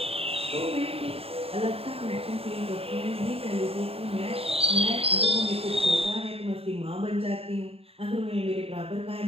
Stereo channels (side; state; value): left; late; 0.28 ms